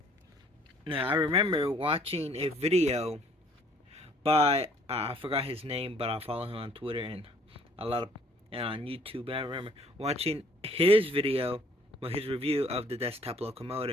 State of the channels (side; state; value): both; normal; correlation 0.59